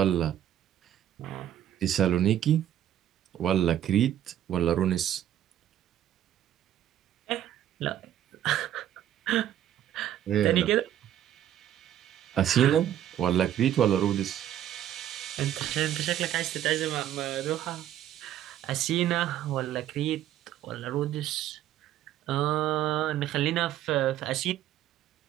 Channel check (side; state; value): left; quieter; 11.4 dB